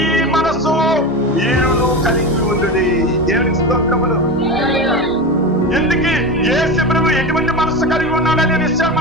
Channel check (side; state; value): both; normal; correlation 0.23